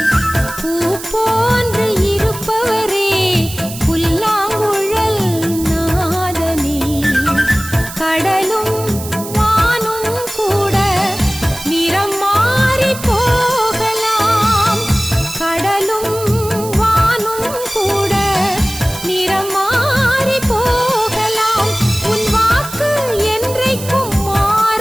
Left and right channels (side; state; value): right; noise; hiss, 12 dB below the sound